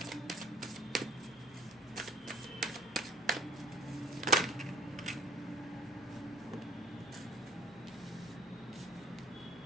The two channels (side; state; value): both; normal; correlation 0.46